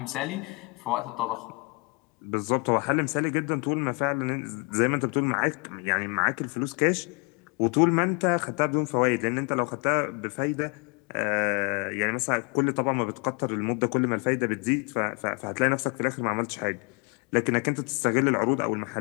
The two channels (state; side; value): quieter; right; 31.4 dB